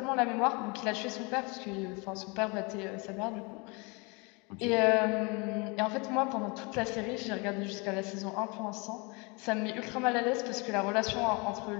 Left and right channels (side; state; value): right; quieter; 29.3 dB